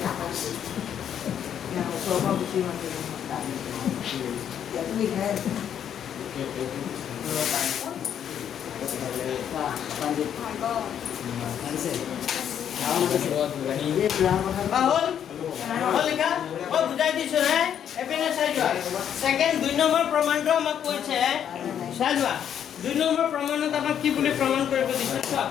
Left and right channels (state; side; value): quieter; right; 9.2 dB